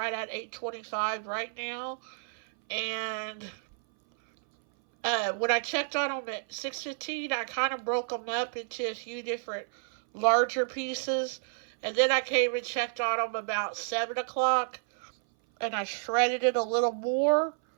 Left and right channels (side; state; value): left; silent; 57 dB below the other